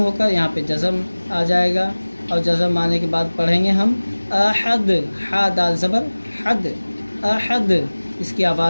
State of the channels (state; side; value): inverted; both; correlation -1.00